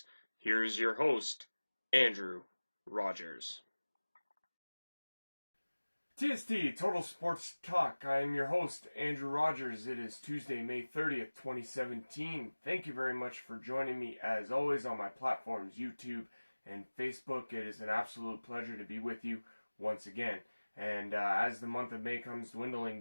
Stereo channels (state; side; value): inverted; both; correlation -1.00